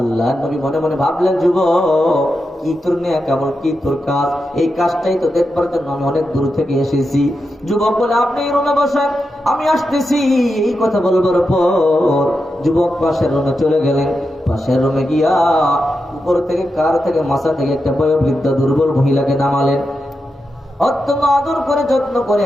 আল্লাহ নবী মনে মনে ভাবলেন, যুবক, কি তোর নেয়া কেমন, কি তোর কাজ, এই কাজটাই তো দেখবার জন্য আমি অনেক দূর থেকে এসেছি। যুবক বলে, আপনি এই রুমে বসেন, আমি আসতেছি। এই কথা বলবার পর যুবক পাশের রুমে চলে গেলেন। পাশের রুমে গিয়া উপর থেকে কার থেকে মাথা থেকে একটা বয়োবৃদ্ধা দুর্বল মহিলাকে নামালেন। অত্যন্ত আদর করে যত্ন করে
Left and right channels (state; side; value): normal; both; correlation 0.88